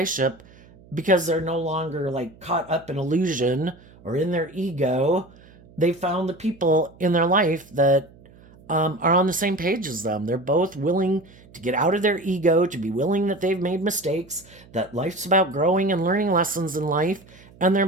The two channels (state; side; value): noise; right; hum, 25 dB below the sound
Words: because they're no longer like caught up in illusion or in their ego. They found the people in their life that are on the same page as them. They're both willing to get out of their ego, to be willing that they've made mistakes, that life's about growing and learning lessons in life, and they're